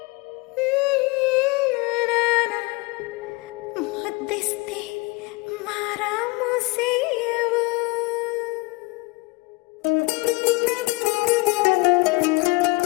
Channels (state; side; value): quieter; right; 25.4 dB